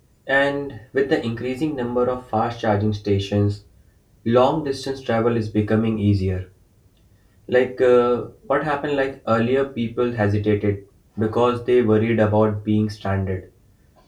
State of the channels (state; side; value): identical; both; correlation 1.00